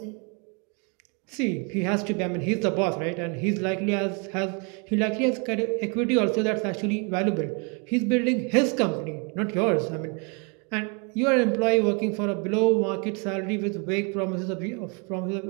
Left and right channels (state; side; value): quieter; left; 34.6 dB